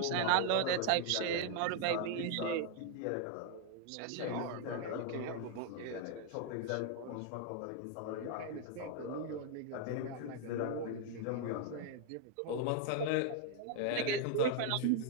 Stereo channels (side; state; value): both; different; correlation 0.00